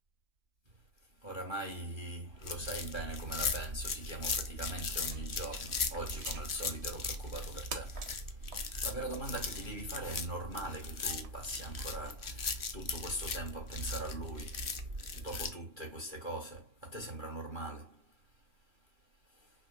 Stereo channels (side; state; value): left; late; 3.0 ms